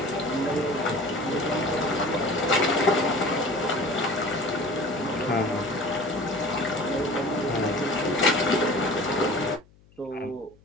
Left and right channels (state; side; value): noise; left; hum, 29 dB below the sound